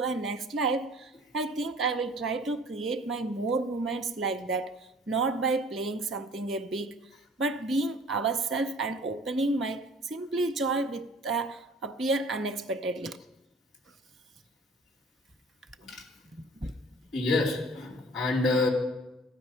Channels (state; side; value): normal; both; correlation 0.49